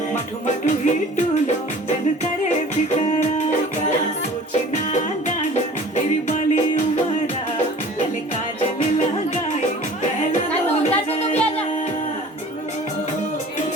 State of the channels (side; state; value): both; normal; correlation 0.45